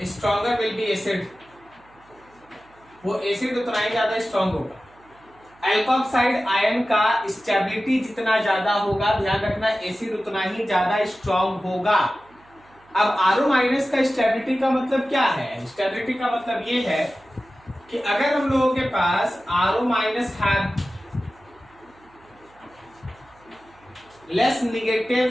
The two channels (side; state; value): right; noise; hum, 29 dB below the sound